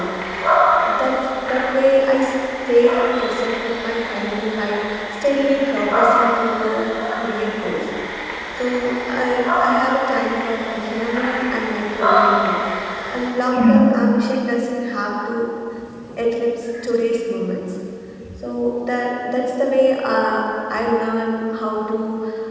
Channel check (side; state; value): both; identical; correlation 1.00